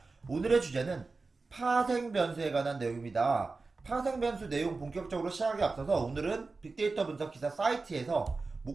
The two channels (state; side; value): quieter; left; 3.9 dB